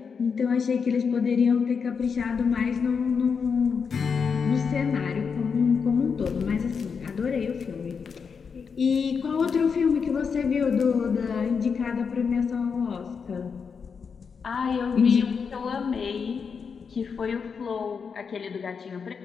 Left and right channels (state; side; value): quieter; right; 5.9 dB